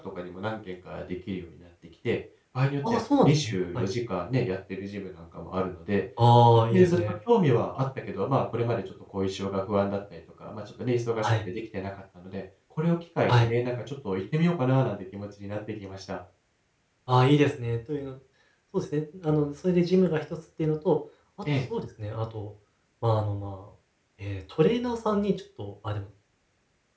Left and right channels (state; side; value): identical; both; correlation 1.00